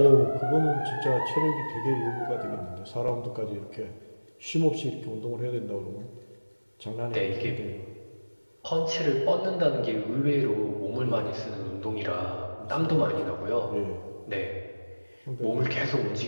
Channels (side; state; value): both; inverted; correlation -1.00